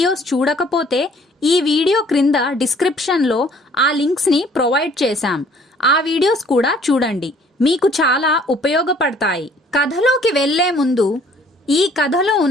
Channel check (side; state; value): both; normal; correlation 0.58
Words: చూడకపోతే ఈ వీడియో క్రింద డిస్క్రిప్షన్లో ఆ లింక్స్ని ప్రొవైడ్ చేశాం. ఆ వీడియోస్ కూడా చూడండి, మీకు చాలా ఉపయోగపడతాయి. కథలోకి వెళ్లే ముందు ఈ కథలో